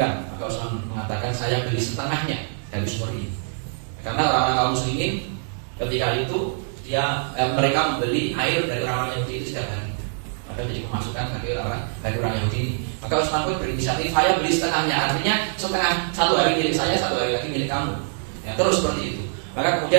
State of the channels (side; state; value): left; silent; digital silence